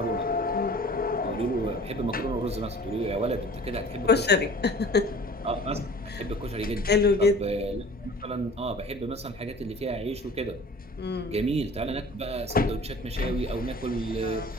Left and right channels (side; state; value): both; normal; correlation 0.45